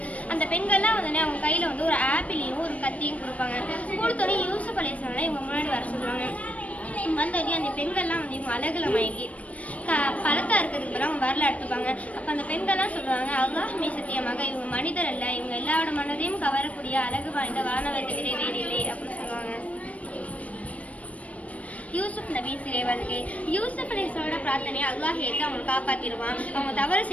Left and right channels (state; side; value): late; right; 0.067 ms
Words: அந்த பெண்கள்லாம் அவங்க கையில் ஒரு ஆப்பிளையும் ஒரு கத்தியும் கொடுப்பாங்க. கொடுத்தோன்னே யூசுப் அலைஹிஸ்ஸலாம் இவங்க முன்னாடி வர சொல்லுவாங்க. வந்தோடனே அந்த பெண்கள்லாம் இவங்க அழகில் மயங்கி பழத்தா இருக்கிறதுக்கு பிறகு அவங்க வரல எடுத்துப்பாங்க. அப்போ அந்த பெண்கள்லாம் சொல்லுவாங்க, அல்லாஹ் மீது சத்தியமாக இவங்க மனிதர் அல்ல, இவங்க எல்லாரோட மனதையும் கவரக்கூடிய அழகு வாய்ந்த வானவத்தை விட வேறில்லை அப்படின்னு சொல்லுவாங்க. யூசுப் நபி சிறை வருகை. யூசுப் அலைஹிஸ்ஸலாமோட பிரார்த்தனையை அல்லாஹ் ஏற்று அவங்களை காப்பாற்றிடுவான். அவங்க தவறு